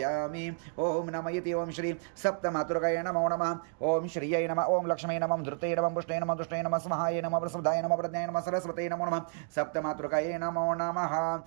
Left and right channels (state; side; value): silent; left; digital silence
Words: ओम नमः इति ओम श्री सप्तमातृकाय नमो नमः। ओम श्रीयै नमः। ओम लक्ष्मी नमः धृते नमः पुष्टे नमः दुष्टे नमः स्वाहाय नमः प्रसुदाय नमः प्रज्ञाय नमः सरस्वती नमो नमः सप्तमातृकाय नमो नमः।